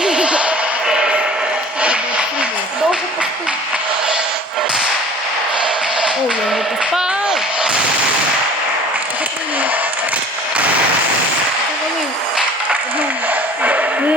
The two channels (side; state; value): both; normal; correlation 0.46